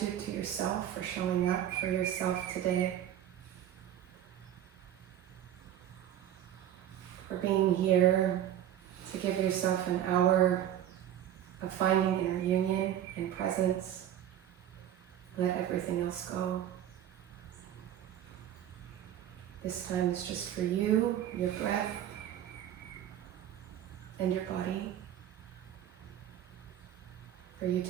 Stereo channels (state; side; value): quieter; left; 11.1 dB